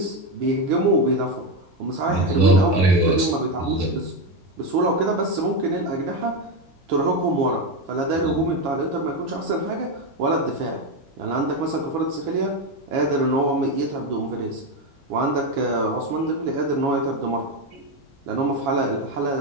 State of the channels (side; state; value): both; normal; correlation 0.11